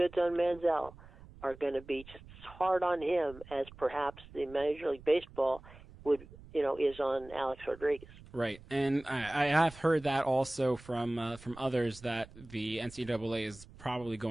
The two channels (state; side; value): noise; right; rumble, 20 dB below the sound